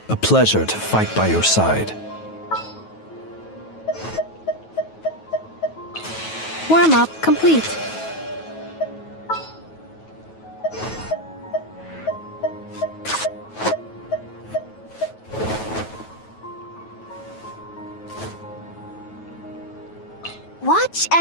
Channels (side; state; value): right; late; 9.3 ms